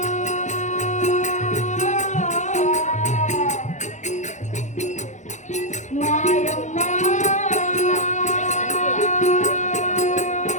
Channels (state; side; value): late; right; 0.35 ms